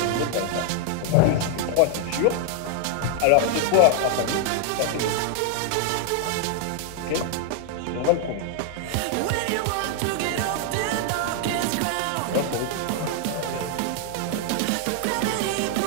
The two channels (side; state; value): both; different; correlation 0.00